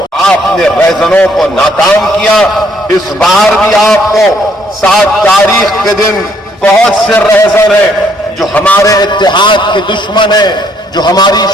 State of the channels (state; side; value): normal; both; correlation 0.68